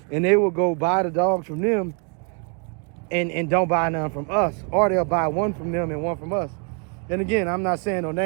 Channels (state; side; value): quieter; left; 38.7 dB